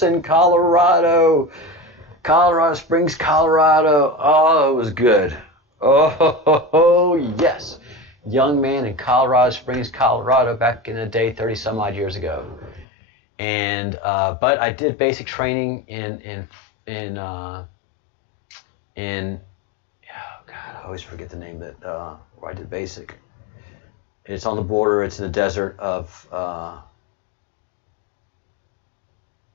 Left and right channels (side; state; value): right; drops out; at 12.9 s